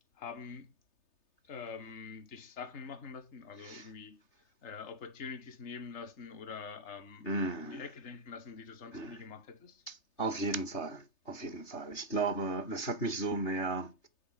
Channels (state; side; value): late; right; 3.3 ms